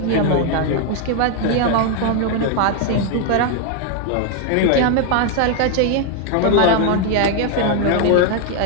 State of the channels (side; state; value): both; different; correlation 0.00